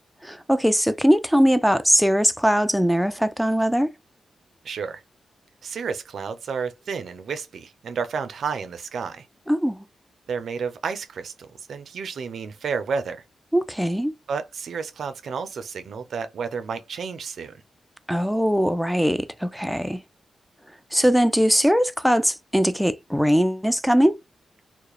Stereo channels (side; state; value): both; normal; correlation 0.97